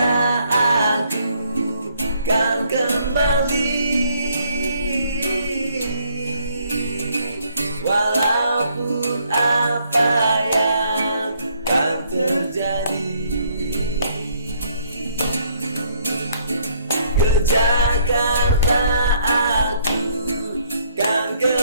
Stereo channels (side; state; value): both; inverted; correlation -0.67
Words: aku kan kembali, walaupun apa yang kan terjadi. Ke Jakarta aku kan